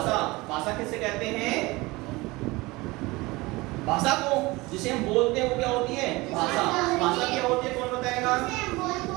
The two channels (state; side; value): quieter; left; 22.1 dB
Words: भाषा किसे कहते हैं? भाषा को जिसे हम बोलते हैं वो क्या होती है? भाषा। भाषा क्या होती है? कौन बताएगा?